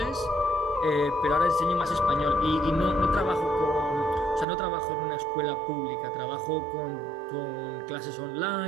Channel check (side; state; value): left; drops out; at 4.5 s